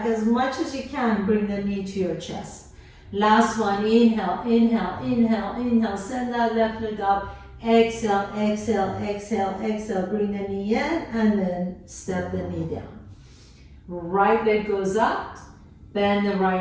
as much as you can, bring the knee to your chest. Last one, inhale, inhale, inhale, inhale, send that left leg up, exhale, exhale, exhale, exhale, bring the knee in, and then step the knee down. Right leg goes up, bend the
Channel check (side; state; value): both; identical; correlation 1.00